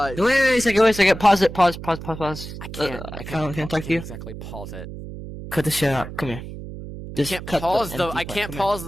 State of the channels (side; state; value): right; noise; hum, 11 dB below the sound